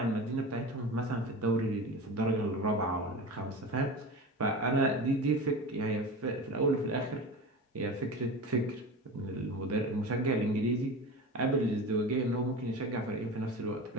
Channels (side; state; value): both; normal; correlation 0.30